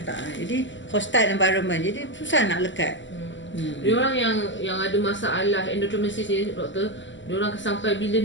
tak. Jadi hostile environment. Jadi susah nak lekat. Diorang yang ada masalah endometriosis ni doktor, diorang sampai bila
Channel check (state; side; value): late; right; 0.54 ms